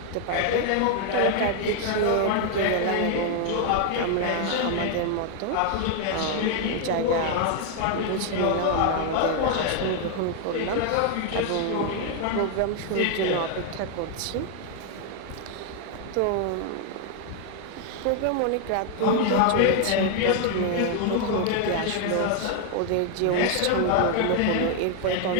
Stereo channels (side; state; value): both; different; correlation 0.00